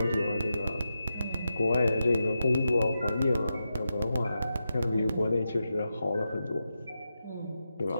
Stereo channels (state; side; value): inverted; both; correlation -0.89